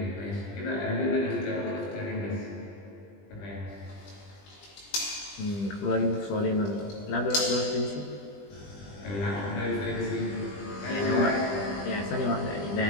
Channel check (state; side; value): late; right; 20 ms